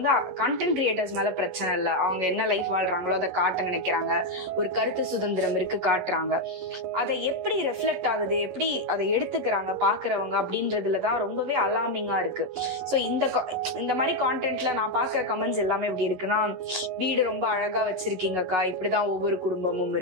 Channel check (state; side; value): late; left; 11 ms